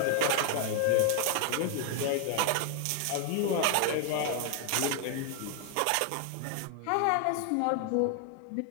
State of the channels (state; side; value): different; both; correlation 0.00